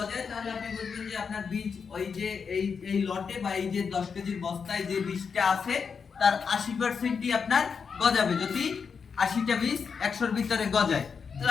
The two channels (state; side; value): quieter; right; 5.9 dB